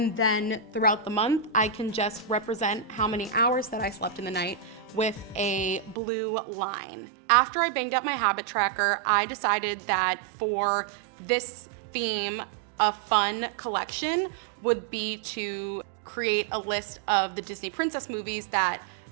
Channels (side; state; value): left; drops out; at 6.0 s